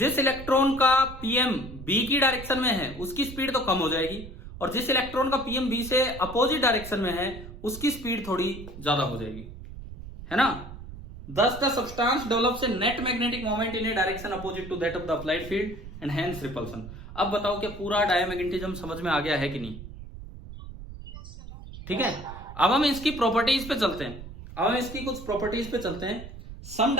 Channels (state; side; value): noise; right; rumble, 13 dB below the sound